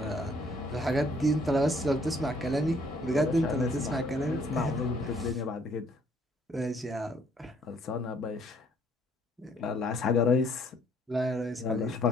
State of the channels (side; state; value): both; normal; correlation 0.64